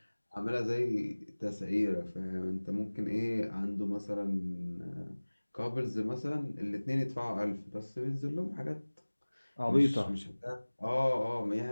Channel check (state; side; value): inverted; both; correlation -1.00